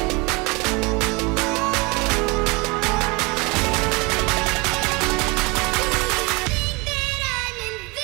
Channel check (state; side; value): quieter; left; 27.0 dB